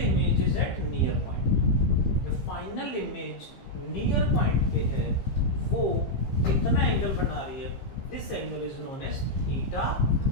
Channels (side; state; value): right; late; 15 ms